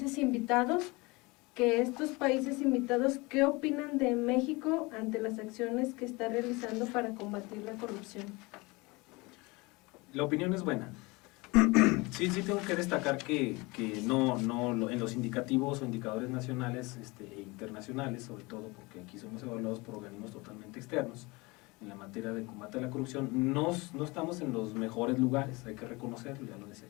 invitados, que estos países invitados, ¿qué opinan de México ante las acciones que está realizando para combatir la corrupción? La opinión es buena. Sí, tengo que destacar que no en los indicativos o indicadores nacionales e internacionales, sobre todo porque aquí somos evaluados por organismos totalmente externos, en la materia de combate a la corrupción, no estamos en los mejores lugares, hay que reconocerlo, ya lo decía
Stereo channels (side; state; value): right; quieter; 24.8 dB